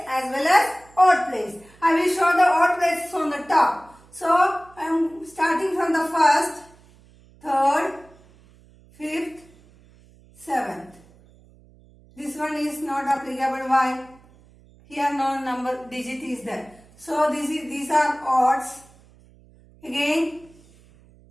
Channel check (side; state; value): right; noise; hum, 27 dB below the sound